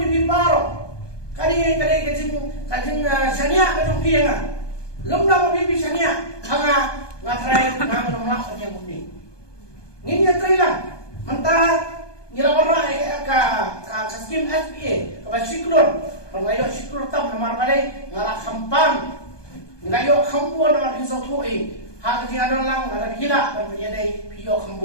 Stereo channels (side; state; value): right; late; 1.2 ms